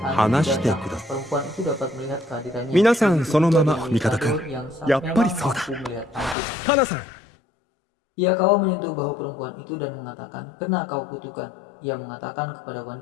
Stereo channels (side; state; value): right; drops out; at 6.4 s